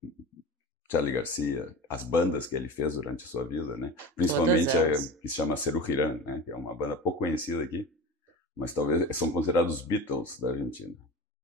Charly Garcia, as bandas que ele fez durante a sua vida, né? Principalmente a que se chama Serú Girán, né? Que é uma banda pouco conhecida aqui, mas talvez são considerados os Beatles da Argentina.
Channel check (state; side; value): normal; both; correlation 0.31